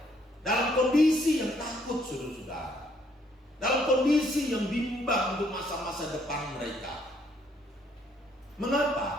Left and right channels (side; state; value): both; normal; correlation 0.68